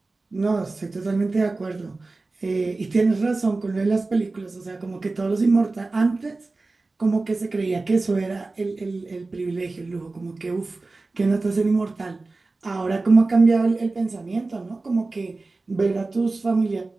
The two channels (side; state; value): left; quieter; 3.5 dB